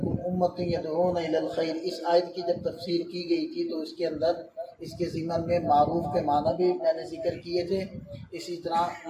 أُمَّةٌ يَدْعُونَ إِلَى الْخَيْرِ، اس آیت کی جب تفسیر کی گئی تھی تو اس کے اندر اس کے ضمن میں معروف کے معنی بھی میں نے ذکر کیے تھے۔ اسی طرح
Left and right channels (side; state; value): both; identical; correlation 1.00